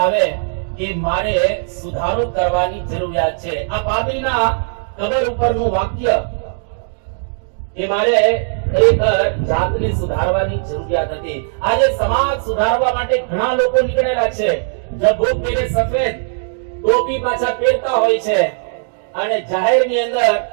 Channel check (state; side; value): silent; left; digital silence